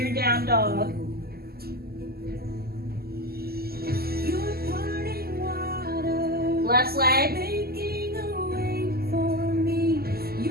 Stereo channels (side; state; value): left; late; 0.45 ms